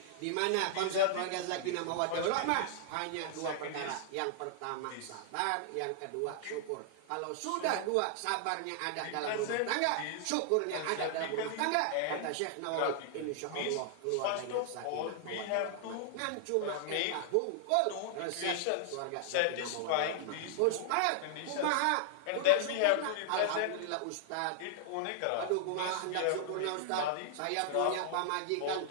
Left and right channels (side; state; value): both; different; correlation -0.01